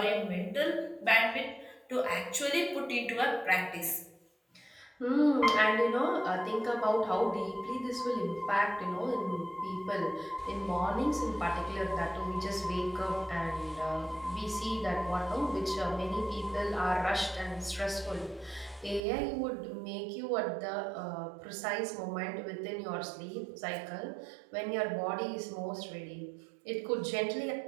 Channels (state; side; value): drops out; left; at 19.0 s